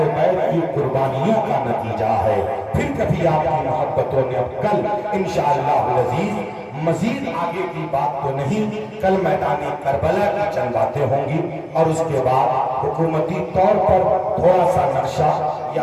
بیت کی قربانیوں کا نتیجہ ہے۔ پھر کبھی آپ کی محبتوں نے اب کل انشاءاللہ العزیز مزید آگے کی بات تو نہیں، کل میدان کربلا کی چند باتیں ہوں گی اور اس کے بعد حکومتی طور پر تھوڑا سا نقشہ،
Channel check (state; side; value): identical; both; correlation 1.00